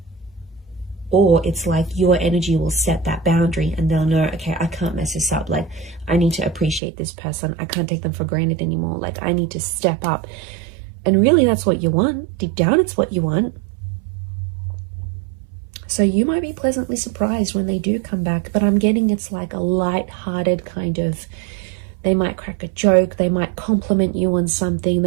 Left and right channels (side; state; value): left; drops out; at 6.8 s